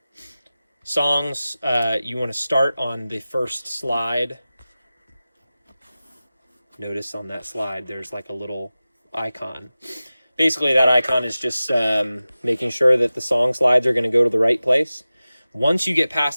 Songs, you want to start on the first slide. Notice on that slide there's like a little icon. Basically, that icon is just making sure that the song slides are going to go to the right place. Once you get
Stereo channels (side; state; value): both; inverted; correlation -0.96